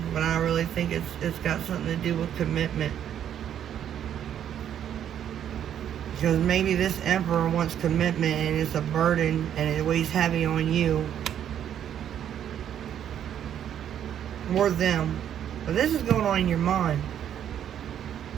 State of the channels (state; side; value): quieter; left; 9.8 dB